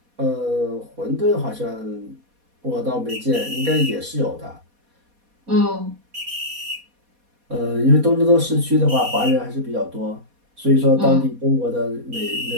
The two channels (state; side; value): late; left; 4.2 ms